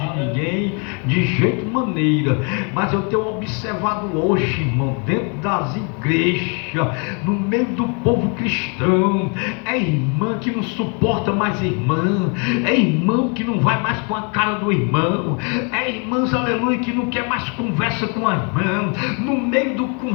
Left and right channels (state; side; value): quieter; right; 36.1 dB